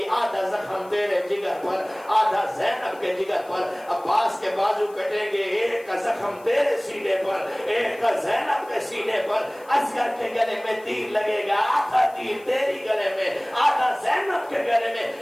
آدھا زخم تیرے جگر پر آدھا زینب کے جگر پر، عباس کے بازو کٹیں گے، ایک کا زخم تیرے سینے پر ایک کا زینب کے سینے پر، اصغر کے گلے میں تیر لگے گا، آدھا تیر تیری گلے میں آدھا زینب کے گلے میں۔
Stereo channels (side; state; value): left; noise; hiss, 27 dB below the sound